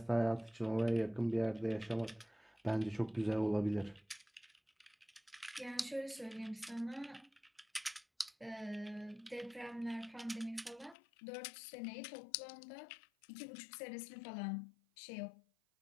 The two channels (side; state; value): right; drops out; at 11.0 s